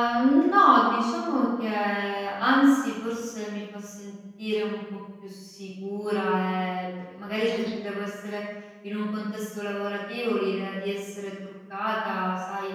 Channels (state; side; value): identical; both; correlation 1.00